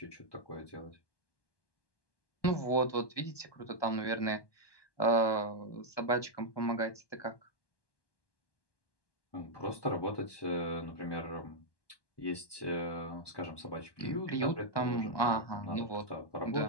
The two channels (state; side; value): late; right; 1.2 ms